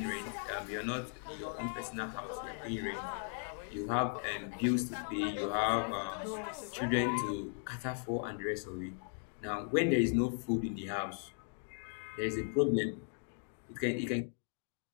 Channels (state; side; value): silent; right; 53 dB below the other